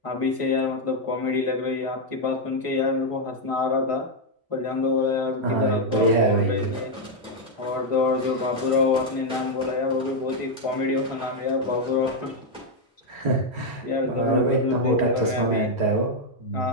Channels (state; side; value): normal; both; correlation 0.01